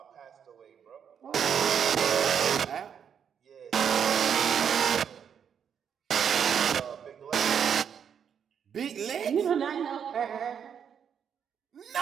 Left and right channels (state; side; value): quieter; left; 7.8 dB